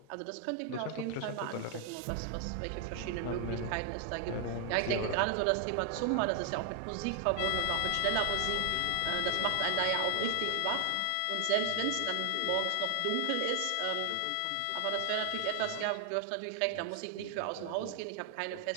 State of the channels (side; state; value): both; different; correlation 0.00